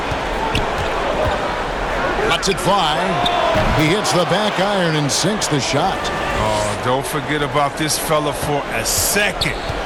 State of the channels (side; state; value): both; identical; correlation 1.00